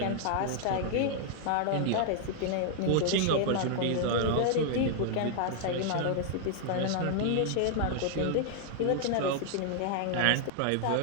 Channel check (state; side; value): different; both; correlation -0.01